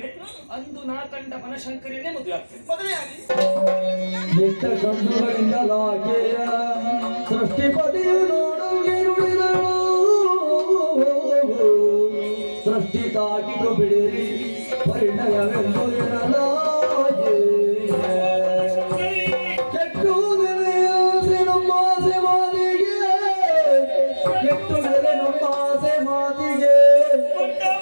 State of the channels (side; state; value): both; inverted; correlation -1.00